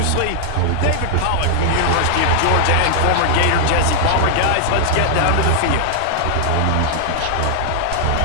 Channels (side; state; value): both; different; correlation 0.00